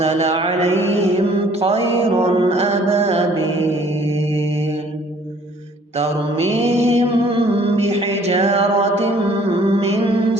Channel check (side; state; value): both; normal; correlation 0.57